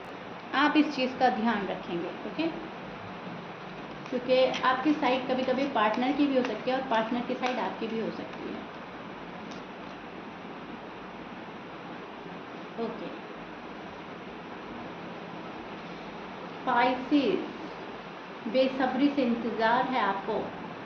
आप इस चीज़ का ध्यान रखेंगे, ओके? क्योंकि आपकी साइड कभी कभी पार्टनर की भी हो सकती है और पार्टनर की साइड आपकी भी हो सकती है, ओके? पाइसेस, बेसब्री से इंतज़ार है आपको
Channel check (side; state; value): both; identical; correlation 1.00